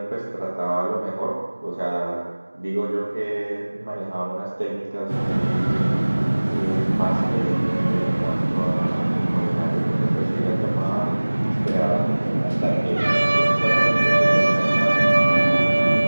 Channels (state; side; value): inverted; both; correlation -1.00